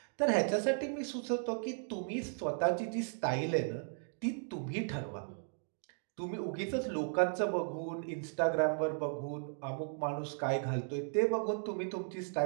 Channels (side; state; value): left; silent; 54 dB below the other